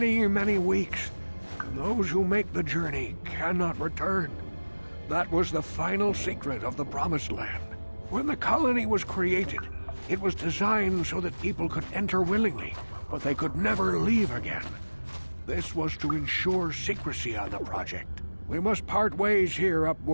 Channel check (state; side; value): inverted; both; correlation -1.00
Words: many weeks, and those who make the journey cannot return. That was the final secret of the Promised Land. When the colony was created, it was designed so that people could enter willingly, but they could never leave again. This was to ensure secrecy on the project. We must part ways here,